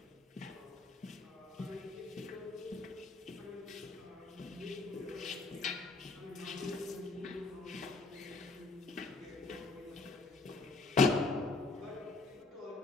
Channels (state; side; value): quieter; right; 3.5 dB